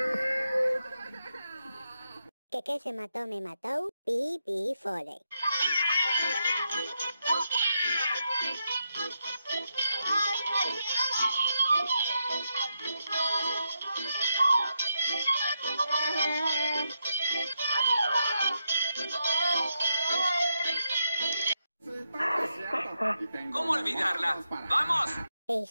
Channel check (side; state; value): both; inverted; correlation -0.83